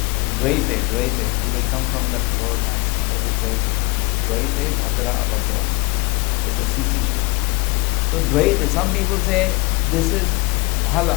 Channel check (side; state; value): right; quieter; 24.7 dB